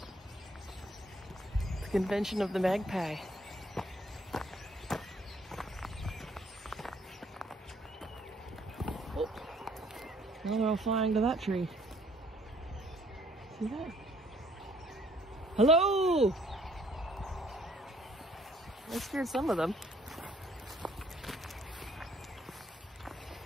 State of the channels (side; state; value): both; normal; correlation 0.63